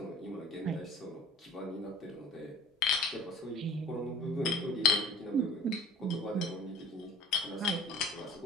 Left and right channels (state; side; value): normal; both; correlation 0.44